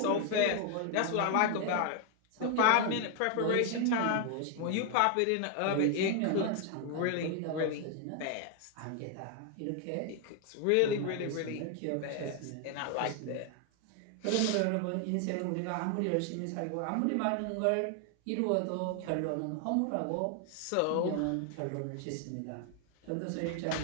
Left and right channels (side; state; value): both; different; correlation 0.00